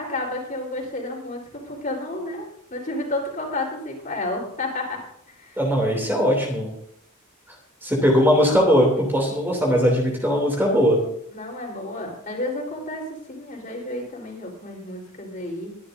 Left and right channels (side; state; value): both; normal; correlation 0.52